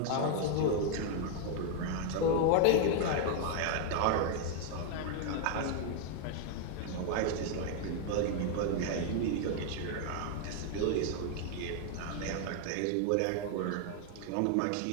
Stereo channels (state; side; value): different; both; correlation 0.00